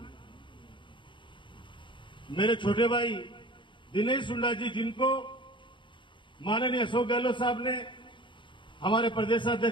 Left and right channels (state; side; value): late; right; 0.24 ms